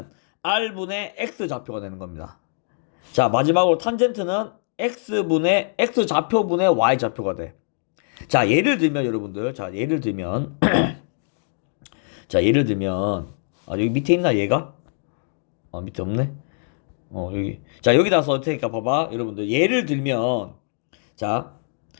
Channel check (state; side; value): silent; right; digital silence